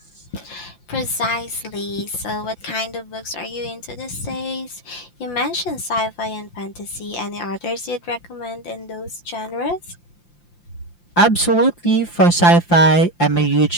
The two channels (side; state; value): right; late; 5.8 ms